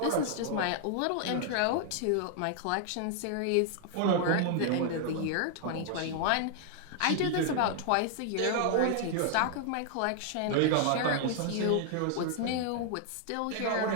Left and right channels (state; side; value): different; both; correlation 0.00